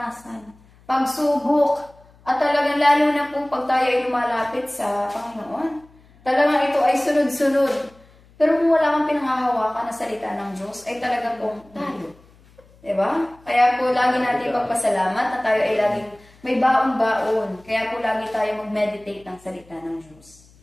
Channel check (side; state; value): left; noise; hum, 28 dB below the sound